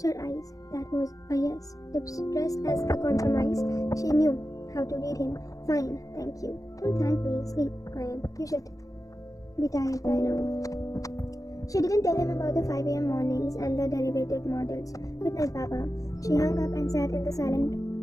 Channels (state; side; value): late; right; 0.17 ms